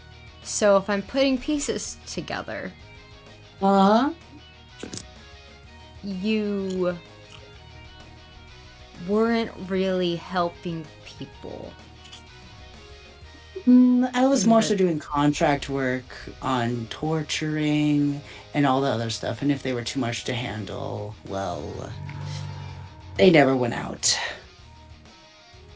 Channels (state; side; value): identical; both; correlation 1.00